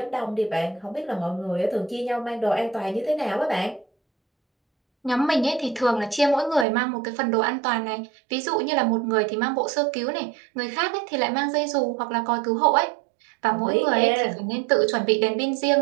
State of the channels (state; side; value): drops out; left; at 6.7 s